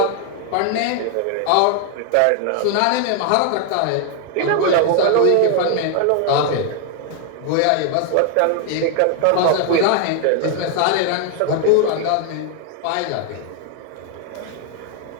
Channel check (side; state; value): both; different; correlation 0.00